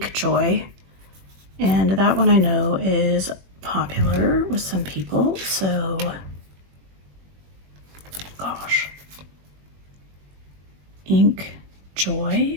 Joy. And that one I know is popular with some people, so gosh. Ink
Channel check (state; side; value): late; left; 21 ms